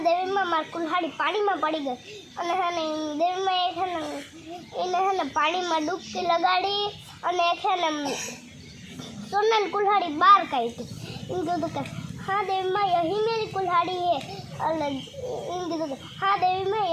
મારી કુલ્હાડી પાણીમાં પડી ગઈ. અને હે ને દેવીમાં એને હે ને પાણીમાં ડૂબકી લગાડી અને છે ને સોનાની કુલ્હાડી બહાર કાઢી. એમ કીધું કે हाँ देवी माँ यही मेरी कुल्हाड़ी है. हाँ देवी माँ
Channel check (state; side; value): identical; both; correlation 1.00